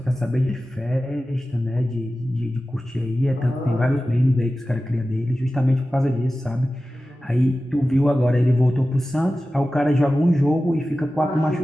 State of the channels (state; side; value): normal; both; correlation 0.95